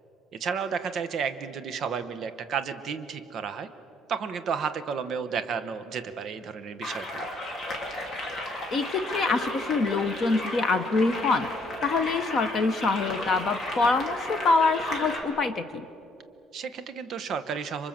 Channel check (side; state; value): both; normal; correlation 0.66